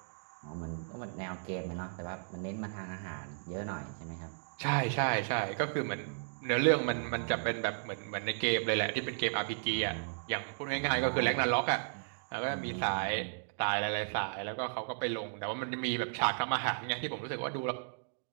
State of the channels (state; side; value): silent; left; digital silence